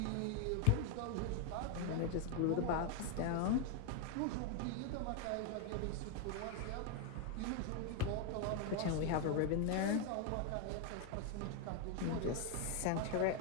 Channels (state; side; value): different; both; correlation 0.01